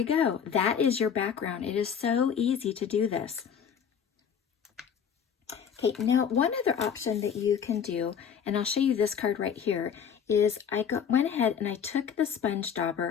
go. That is your background. It is so easy to do this. Okay, now one other option that you can do, and I'll show you this card right here, is I went ahead and I took the sponge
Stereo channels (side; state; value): right; quieter; 7.6 dB